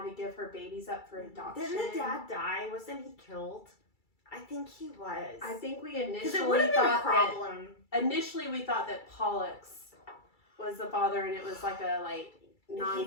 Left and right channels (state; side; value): late; right; 2.3 ms